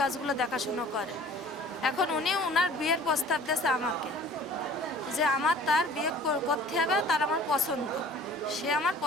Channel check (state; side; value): normal; both; correlation 0.48